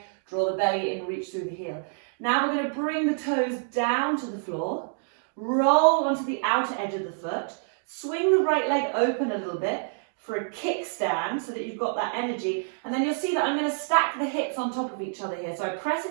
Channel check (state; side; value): silent; left; digital silence